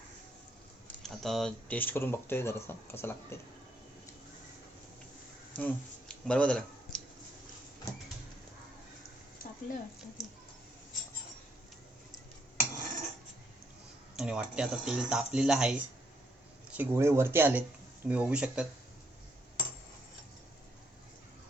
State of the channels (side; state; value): both; normal; correlation 0.74